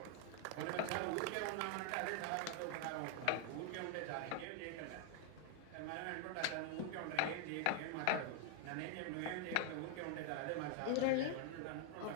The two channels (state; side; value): different; both; correlation 0.00